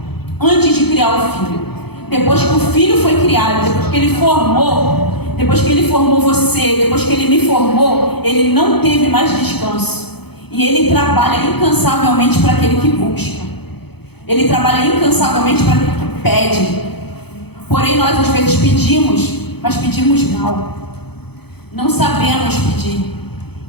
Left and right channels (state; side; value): late; right; 0.97 ms